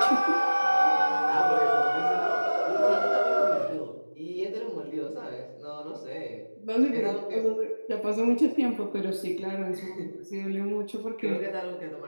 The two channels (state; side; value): inverted; both; correlation -1.00